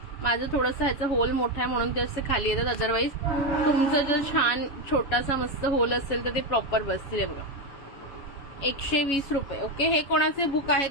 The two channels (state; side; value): late; right; 7.2 ms